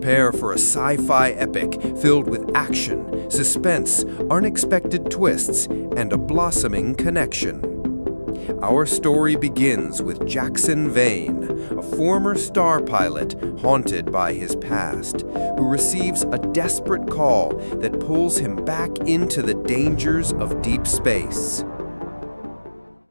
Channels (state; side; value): inverted; both; correlation -1.00